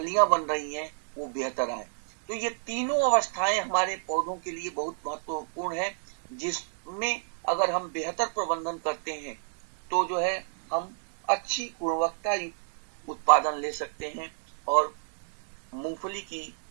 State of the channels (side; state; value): left; silent; digital silence